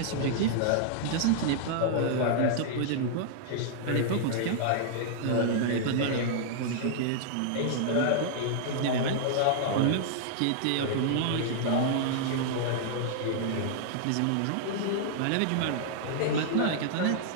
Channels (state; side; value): different; both; correlation -0.01